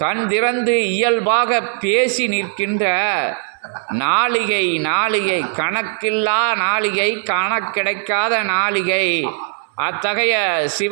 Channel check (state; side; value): silent; left; 66 dB below the other